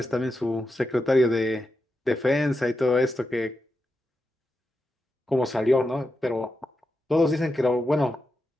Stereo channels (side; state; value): both; normal; correlation 0.88